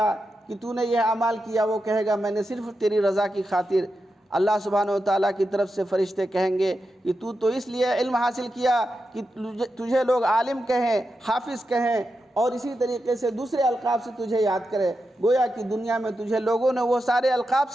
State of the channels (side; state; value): both; normal; correlation 0.88